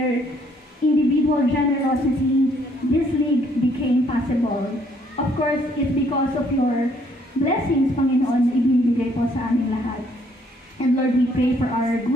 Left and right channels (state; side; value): normal; both; correlation 0.66